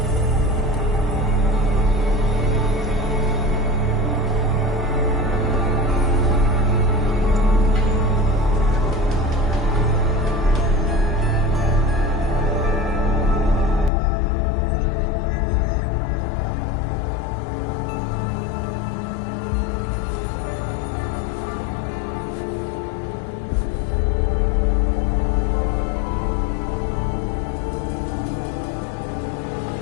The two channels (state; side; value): drops out; right; at 13.9 s